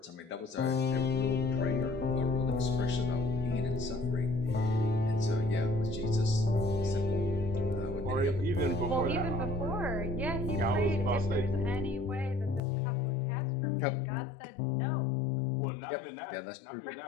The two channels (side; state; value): right; drops out; at 12.6 s